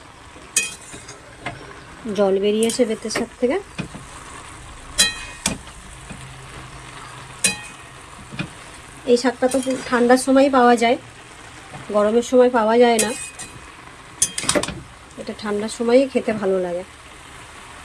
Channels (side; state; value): both; identical; correlation 1.00